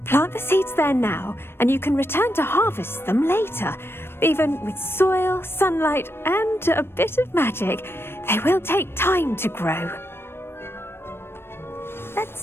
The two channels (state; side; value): late; right; 0.12 ms